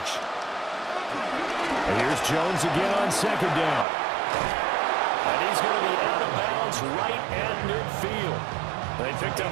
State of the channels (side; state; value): left; drops out; at 3.9 s